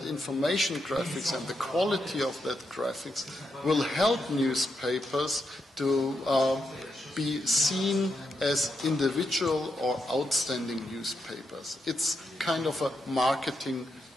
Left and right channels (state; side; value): normal; both; correlation 0.83